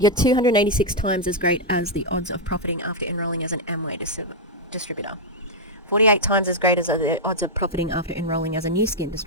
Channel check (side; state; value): both; normal; correlation -0.03